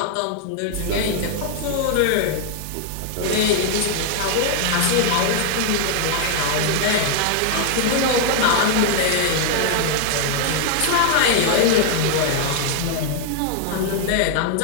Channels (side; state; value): both; different; correlation 0.00